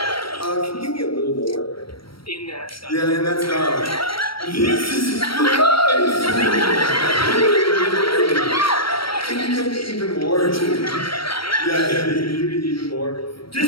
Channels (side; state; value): right; late; 0.74 ms